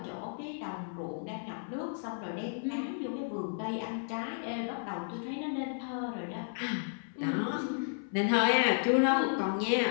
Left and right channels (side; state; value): right; silent; 56 dB below the other